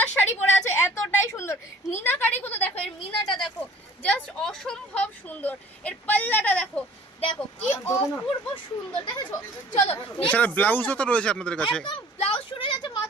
শাড়ি পরে আছো, এতটাই সুন্দর। মিনাকারিগুলো দেখো, এর মিনাটা দেখো, জাস্ট অসম্ভব সুন্দর। এর পাল্লাটা দেখো, দেখো কি অপূর্ব সুন্দর, দেখেছো? চলো এছাড়া ব্লাউজও তো রয়েছে আপনাদের কাছে। একদম ব্লাউজ শুরু যাচ্ছে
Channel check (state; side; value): normal; both; correlation 0.51